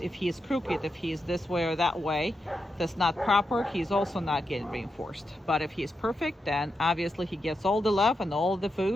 he's crooked, if he's this way or that way, that's not proper, he's also not getting reinforced. But if he's perfect, then obviously he gets all the love and all the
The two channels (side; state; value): both; normal; correlation 0.86